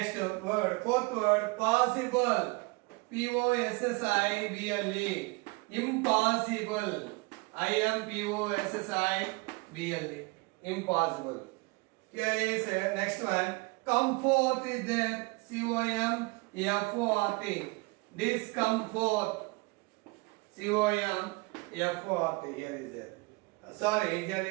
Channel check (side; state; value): left; quieter; 26.3 dB